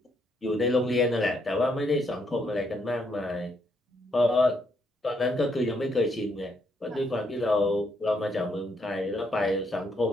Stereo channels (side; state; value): both; normal; correlation 0.74